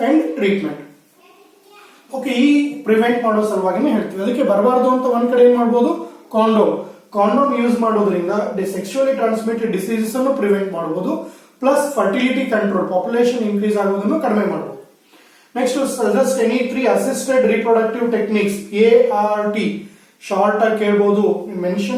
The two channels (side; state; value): both; identical; correlation 1.00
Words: and treatment. Okay, ಈ ಪ್ರಿವೆಂಟ್ ಮಾಡೋ ಸಲುವಾಗಿನೇ ಹೇಳ್ತೀವಿ. ಅದಕ್ಕೆ ಬರಬಾರ್ದು ಅಂತ ಒಂದ್ ಕಡೆ ಏನ್ ಮಾಡ್ಬೋದು, ಕಾಂಡೋಮ್ ಯೂಸ್ ಮಾಡೋದ್ರಿಂದ ಸೆಕ್ಷುಯಲಿ ಟ್ರಾನ್ಸ್ಮಿಟೆಡ್ ಡಿಸೀಸಸ್ ಅನ್ನು ಪ್ರಿವೆಂಟ್ ಮಾಡಬಹುದು, plus fertility control, population increase ಆಗೋದನ್ನು ಕಡಿಮೆ ಮಾಡಬಹುದು. Next, suggest any 3 assisted reproductive techniques, ART. Short ಆಗಿ ಕೇಳಬಹುದು,